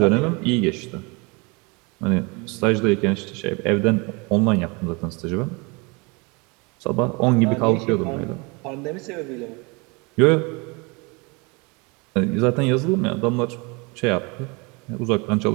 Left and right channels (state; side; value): quieter; left; 28.8 dB